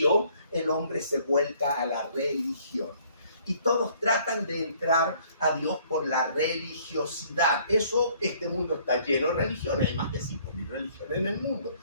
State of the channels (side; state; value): both; inverted; correlation -0.60